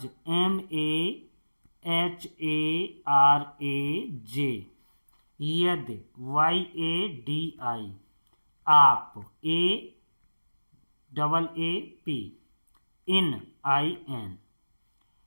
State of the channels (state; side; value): inverted; both; correlation -1.00